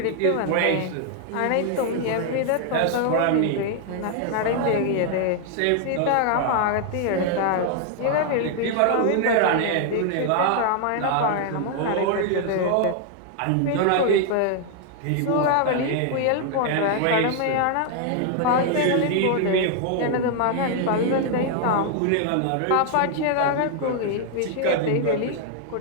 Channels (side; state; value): both; different; correlation 0.00